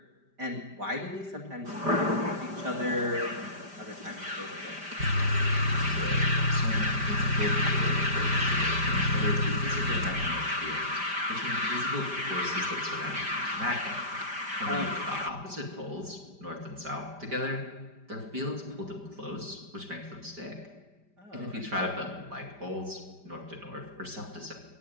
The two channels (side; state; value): left; late; 5.1 ms